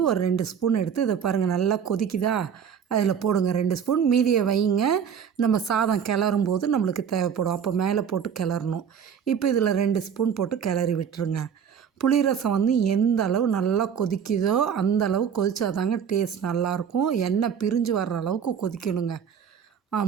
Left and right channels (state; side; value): quieter; left; 7.7 dB